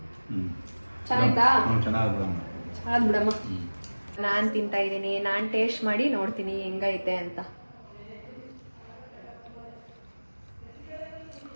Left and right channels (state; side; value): inverted; both; correlation -1.00